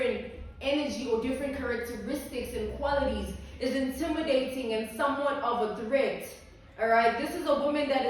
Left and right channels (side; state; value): both; identical; correlation 1.00